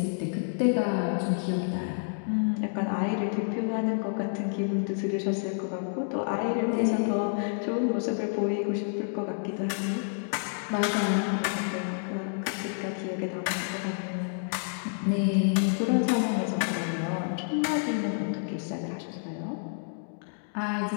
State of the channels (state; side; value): silent; right; digital silence